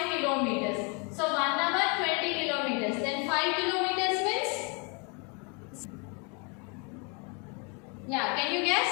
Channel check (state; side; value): quieter; right; 34.2 dB